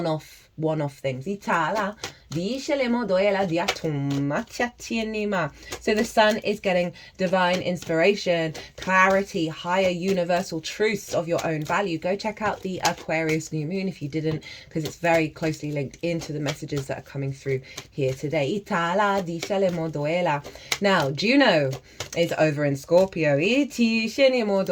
things. So the sun is getting divine inspiration, clarity, higher universal truths of your own value. Go check out the Aquarius new moon if you didn't, because it's very closely linked into the messages that are coming through here today. Now, Juno is over in Scorpio.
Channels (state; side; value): identical; both; correlation 1.00